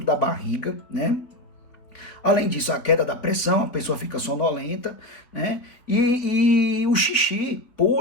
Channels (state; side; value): late; right; 3.8 ms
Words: da barriga, né? Além disso, a queda da pressão, a pessoa fica sonolenta, né? E o xixi,